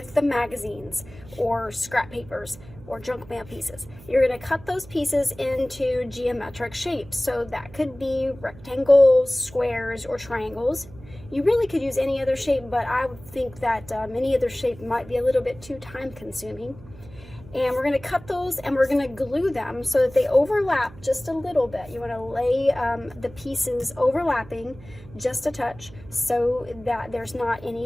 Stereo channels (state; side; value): noise; right; hum, 19 dB below the sound